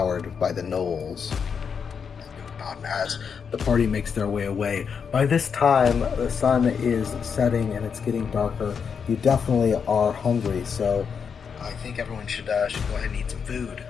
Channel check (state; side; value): quieter; right; 6.5 dB